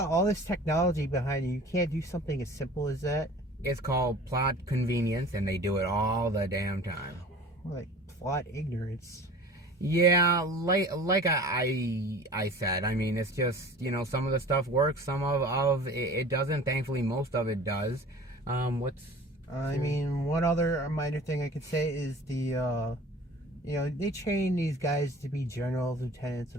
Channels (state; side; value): normal; both; correlation 0.43